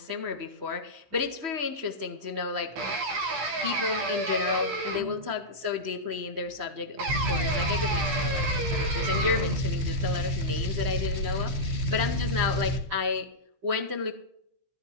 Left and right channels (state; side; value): late; left; 15 ms